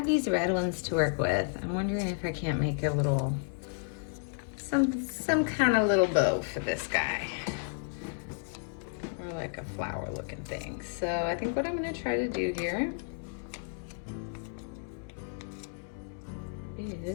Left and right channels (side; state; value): right; silent; digital silence